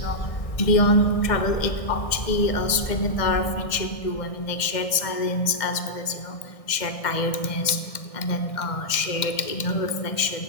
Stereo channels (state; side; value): late; right; 1.6 ms